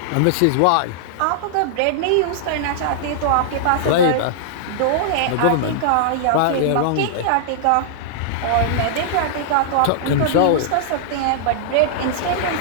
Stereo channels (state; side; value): different; both; correlation -0.01